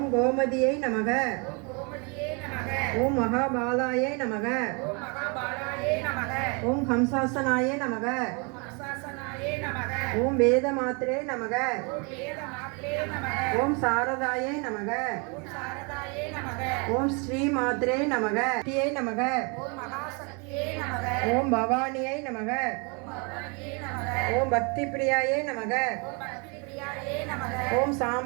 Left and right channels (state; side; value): quieter; left; 33.0 dB